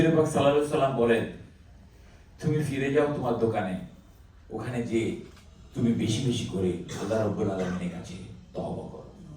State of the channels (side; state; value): both; identical; correlation 1.00